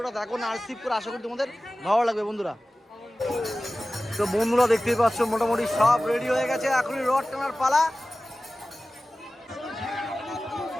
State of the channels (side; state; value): both; normal; correlation 0.96